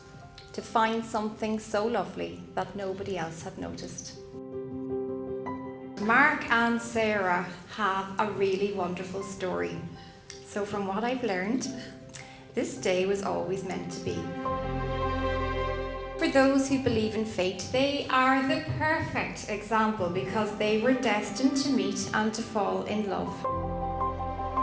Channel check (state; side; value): identical; both; correlation 1.00